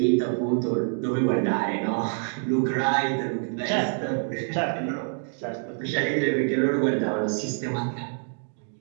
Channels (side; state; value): left; silent; 61 dB below the other